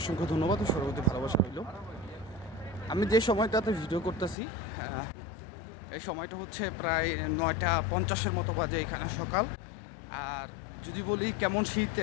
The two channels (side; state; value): right; drops out; at 4.4 s